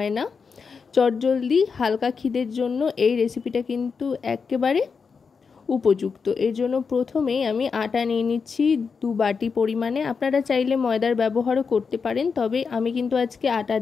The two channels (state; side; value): quieter; right; 5.5 dB